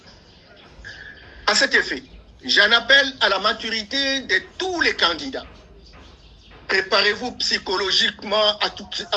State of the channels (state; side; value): identical; both; correlation 1.00